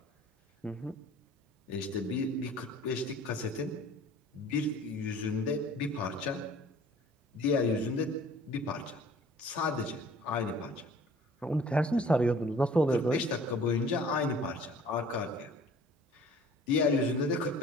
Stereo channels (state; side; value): normal; both; correlation 0.50